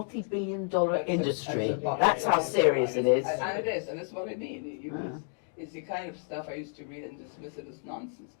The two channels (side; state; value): right; silent; 57 dB below the other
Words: industry. That's That's how serious it is. And it is, and that's what I mean. It's the kind of stuff I used to read and dismiss it as nonsense.